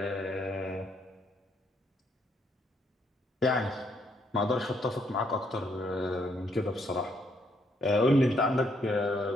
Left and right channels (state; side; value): normal; both; correlation 0.72